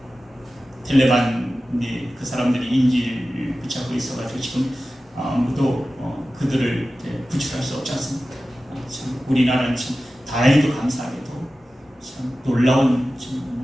텔레반이 그 사람들이 인지를 붙잡고 있어가지고 지금 아무도 그들을 구출할 수 없지 않습니까? 참 우리나라는 참 다행히도 감사하게도 참 놀라운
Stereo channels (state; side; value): normal; both; correlation 0.95